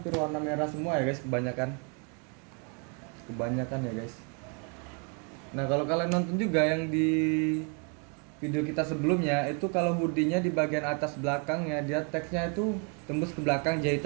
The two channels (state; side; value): quieter; left; 37.6 dB